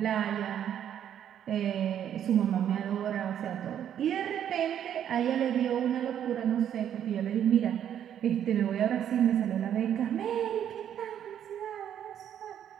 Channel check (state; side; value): quieter; left; 9.8 dB